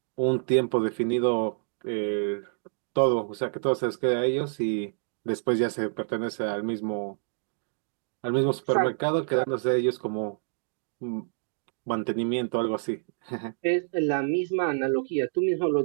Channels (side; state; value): left; silent; 59 dB below the other